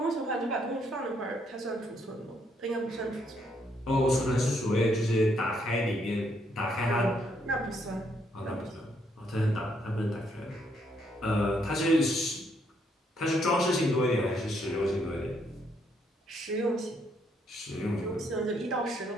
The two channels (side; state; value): both; normal; correlation 0.72